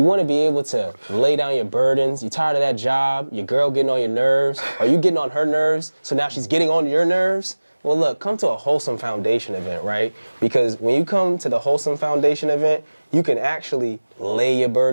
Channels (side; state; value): both; inverted; correlation -1.00